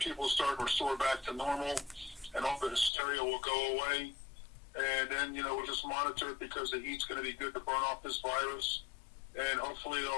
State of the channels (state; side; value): drops out; right; at 2.9 s